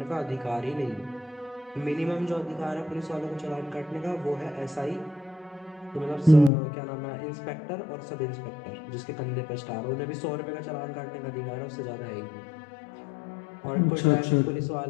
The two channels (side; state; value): right; drops out; at 6.5 s